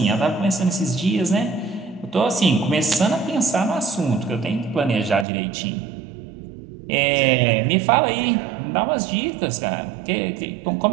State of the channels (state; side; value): drops out; left; at 5.2 s